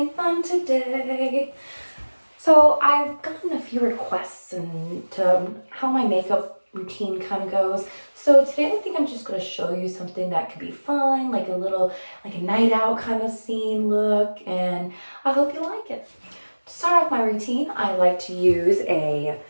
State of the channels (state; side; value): inverted; both; correlation -1.00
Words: fun today. So I've gotten a few requests to how my makeup routine kind of goes. So today I think I'm just going to show you something that could be fun, like a night out kind of scene look, and I hope you like it. To start off my routine, I like to use a